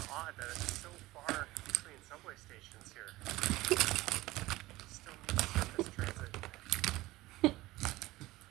of odd that it's so far between subway stations here. Still need surface transit. He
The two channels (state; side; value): quieter; left; 18.4 dB